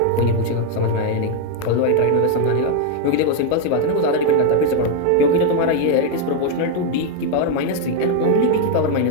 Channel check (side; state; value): both; different; correlation 0.01